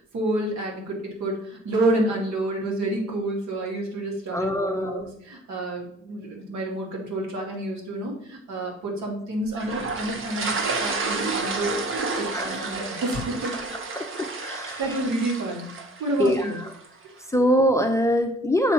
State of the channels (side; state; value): both; normal; correlation 0.51